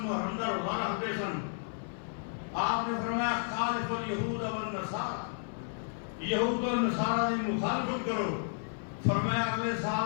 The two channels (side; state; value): right; silent; 56 dB below the other